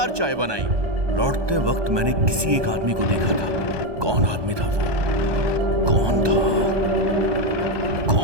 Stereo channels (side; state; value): left; late; 1.2 ms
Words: चाय बनाई। लौटते वक्त मैंने किसी एक आदमी को देखा था। कौन आदमी था वो? कौन